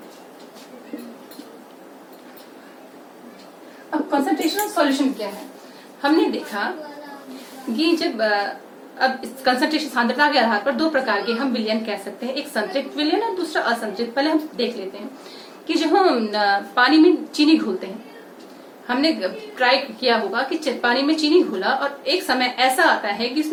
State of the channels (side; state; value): both; identical; correlation 1.00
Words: अब कंसंट्रेशन ऑफ सॉल्यूशन क्या है, हमने देखा कि जब अब कंसंट्रेशन सांद्रता के आधार पर दो प्रकार के हम विलयन कह सकते हैं, एक संतृप्त विलयन और दूसरा असंतृप्त। पहले हम देख लेते हैं कि जब हम पानी में चीनी घोलते हैं, हमने ट्राई किया होगा कि पानी में चीनी घोला और एक समय ऐसा आता है कि